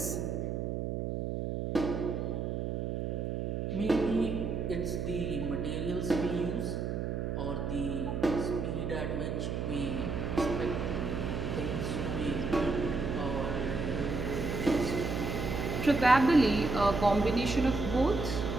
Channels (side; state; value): right; noise; hum, 2 dB below the sound